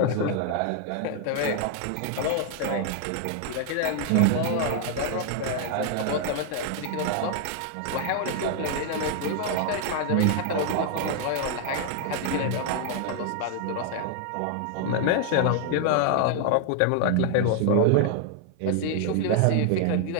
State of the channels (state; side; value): different; both; correlation 0.00